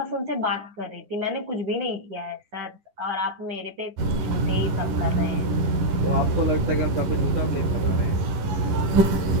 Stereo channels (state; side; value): late; left; 10 ms